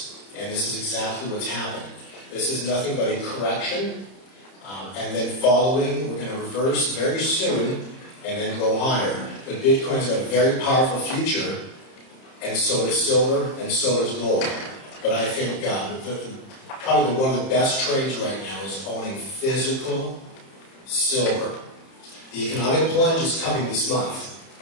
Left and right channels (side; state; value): right; late; 30 ms